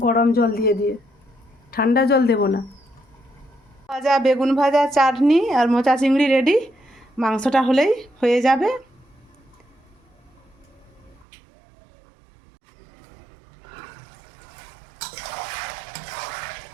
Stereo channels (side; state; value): left; drops out; at 11.2 s